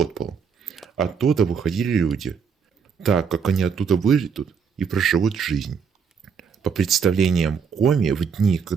Оттуда выходили люди, так как они оттуда выйдут и проживут жизнь. По представлениям коми, в дни,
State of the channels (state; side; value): quieter; left; 6.4 dB